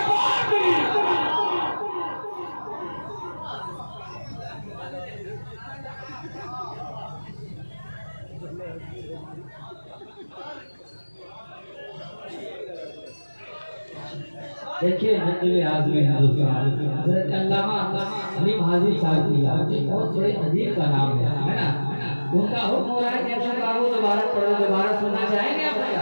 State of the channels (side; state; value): both; inverted; correlation -1.00